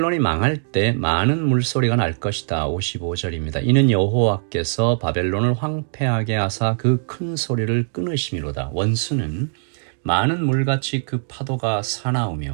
망할 때 많은 물소리가 날 것이다. 55절입니다. 이는 여호와께서 바벨론을 황폐하게 하사 그 큰 소리를 끊으심이로다. 원수는 많은 물같이 그 파도가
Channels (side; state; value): left; silent; digital silence